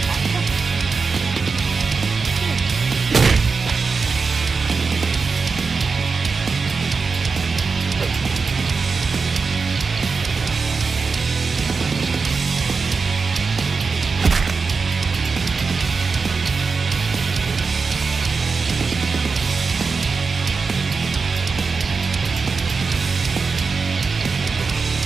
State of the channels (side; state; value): left; quieter; 4.7 dB